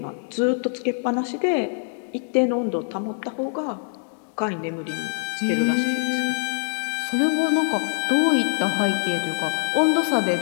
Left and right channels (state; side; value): silent; right; 63 dB below the other